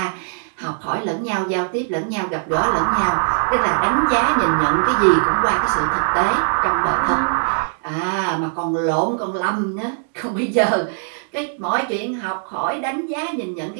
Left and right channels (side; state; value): left; silent; digital silence